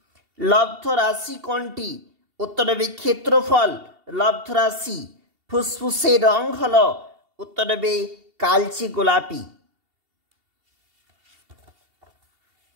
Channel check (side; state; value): left; late; 2.7 ms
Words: লব্ধ রাশি কোনটি? উত্তর হবে ক্ষেত্রফল। লব্ধ রাশি। ফুসফুসের রং হলো উত্তর হবে কালচে গোলাপি।